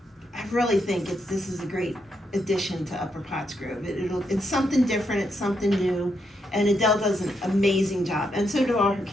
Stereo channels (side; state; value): both; normal; correlation 0.80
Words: really think this is a great addition to Upper Pottsgrove. It's something different, it's something new, and Adele does an amazing job, and so do all her